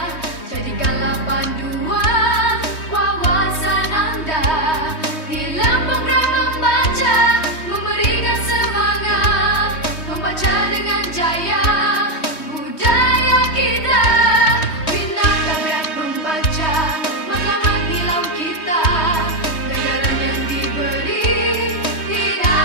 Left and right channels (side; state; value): right; late; 3.2 ms